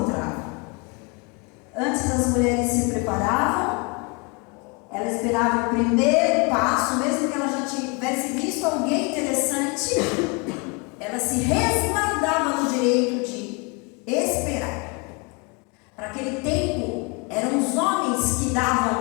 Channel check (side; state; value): right; quieter; 31.2 dB